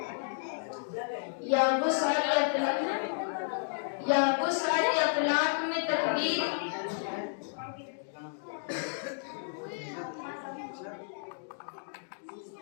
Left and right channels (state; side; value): silent; right; digital silence